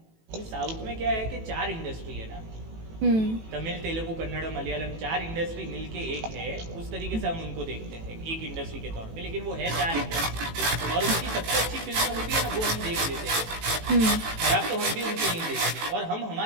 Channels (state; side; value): late; left; 18 ms